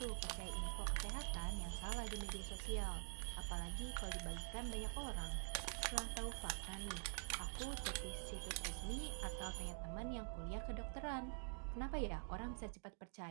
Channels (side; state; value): left; silent; digital silence